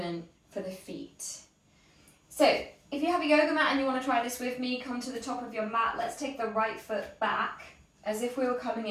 for the feet. So if you have a yoga mat and you want to try this with me, come to the top of your mat. Let's take the right foot back as if we were coming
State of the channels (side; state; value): both; identical; correlation 1.00